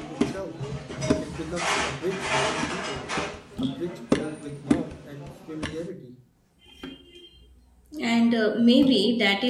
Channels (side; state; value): both; identical; correlation 1.00